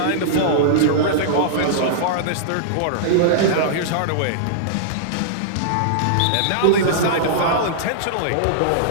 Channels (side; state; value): both; different; correlation -0.02